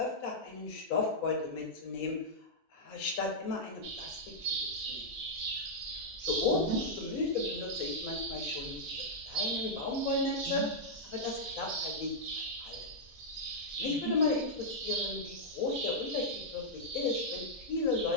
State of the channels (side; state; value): both; normal; correlation -0.08